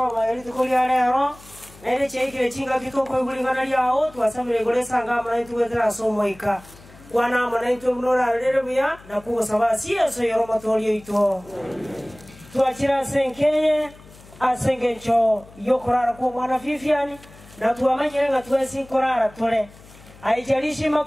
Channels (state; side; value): noise; left; hum, 22 dB below the sound